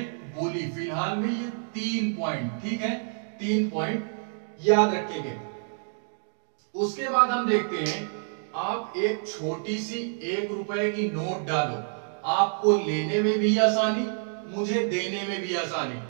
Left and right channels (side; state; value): left; silent; 60 dB below the other